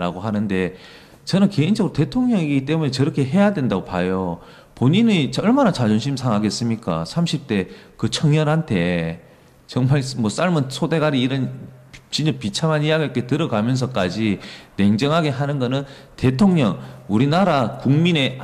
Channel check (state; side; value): identical; both; correlation 1.00